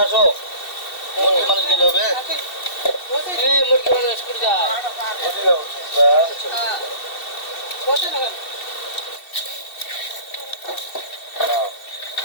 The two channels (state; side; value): late; right; 2.7 ms